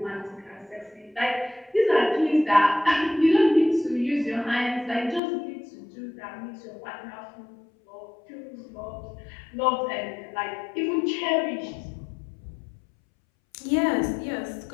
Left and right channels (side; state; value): right; drops out; at 5.2 s